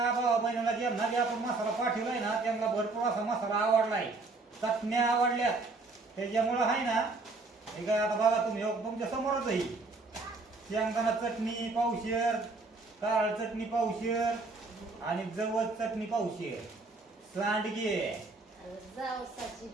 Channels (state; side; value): quieter; left; 3.6 dB